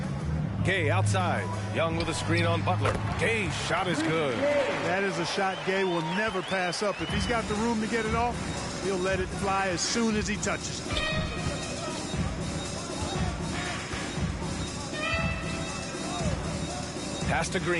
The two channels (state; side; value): identical; both; correlation 1.00